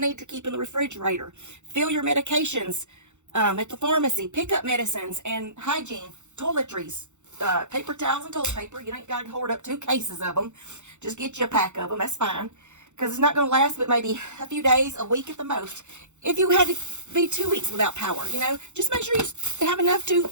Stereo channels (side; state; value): left; late; 0.84 ms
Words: to keep in the refrigerator. Fill your medications at the pharmacy. Pick up medicines and hygiene, toiletries, paper towels and toilet paper. You ain't got to hoard up 2 cases of them. Just get you a pack of them. That's fine. Because it's not going to last but maybe a few days, a week at the most. If you had to be 2 weeks without power, just make sure you have enough to